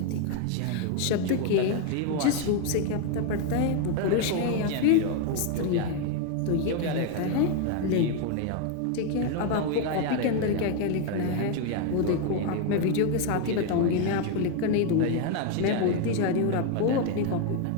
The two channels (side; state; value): both; different; correlation 0.01